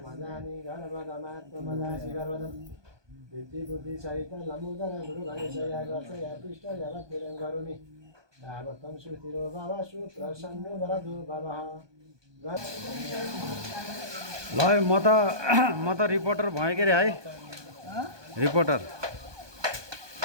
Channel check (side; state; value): left; late; 1.2 ms